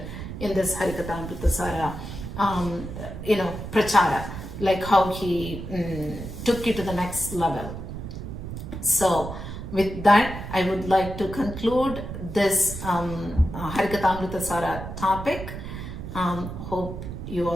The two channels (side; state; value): right; noise; rumble, 9 dB below the sound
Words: in this Harikathamruta saara prachara, like how he took it to the next level. So with that, I would like to conclude this Harikathamruta saara topic. Hope you